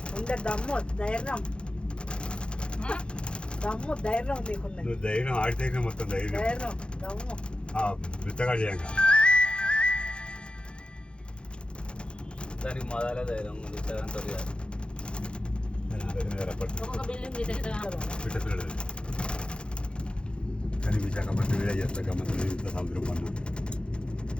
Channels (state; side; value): late; right; 0.054 ms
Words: దమ్ము ధైర్యం దమ్ము ధైర్యం నీకున్నది. నువ్వు ధైర్యం ఆడితే మొత్తం ధైర్యం ధైర్యం దమ్ము విత్తగా చేయంగా దానికి మొదలే ధైర్యం ఉంది. పిల్లలు కానీ విశాఖపట్నం వీడే చేస్తా గమ్మత్తు ఇంత సముద్రం పన్ను